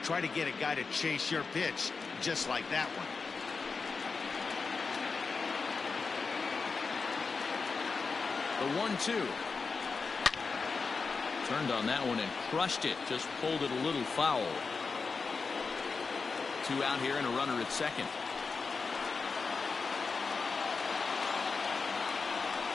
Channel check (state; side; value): quieter; right; 4.7 dB